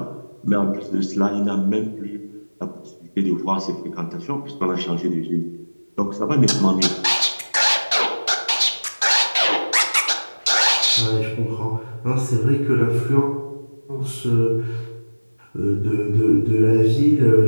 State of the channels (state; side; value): inverted; both; correlation -1.00